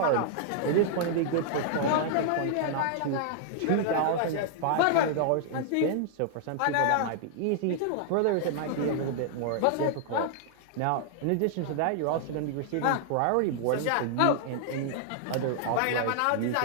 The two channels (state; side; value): different; both; correlation -0.01